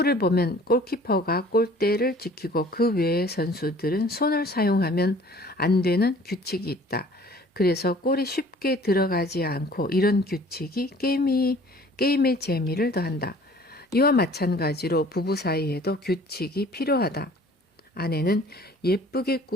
보면 골키퍼가 골대를 지키고 그 외의 선수들은 손을 사용하면 안 되는 규칙이 있다. 그래서 골이 쉽게 들어가지 않고 이런 규칙이 게임의 재미를 더한다. 이와 마찬가지로 부부 사이에도 규칙이 필요하다. 아내는 예쁘게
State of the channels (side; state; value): both; normal; correlation 0.51